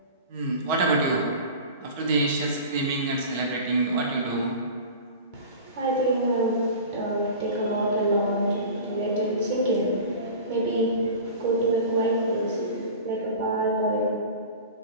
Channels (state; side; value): inverted; both; correlation -0.36